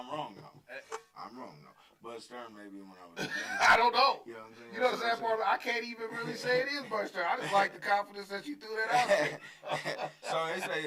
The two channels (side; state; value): both; identical; correlation 1.00